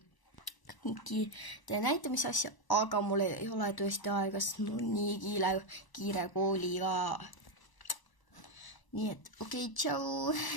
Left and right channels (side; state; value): right; late; 1.0 ms